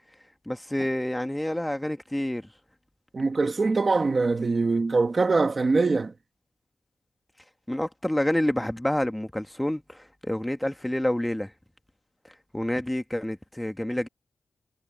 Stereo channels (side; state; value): both; normal; correlation 0.97